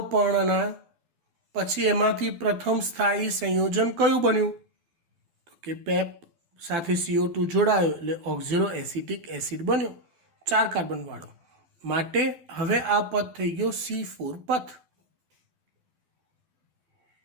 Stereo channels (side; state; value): left; late; 12 ms